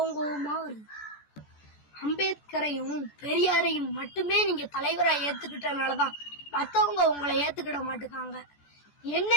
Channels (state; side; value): late; right; 14 ms